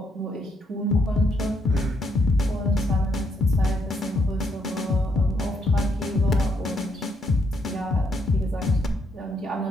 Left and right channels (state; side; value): normal; both; correlation 0.75